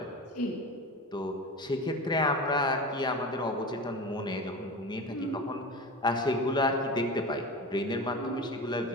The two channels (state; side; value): normal; both; correlation 0.29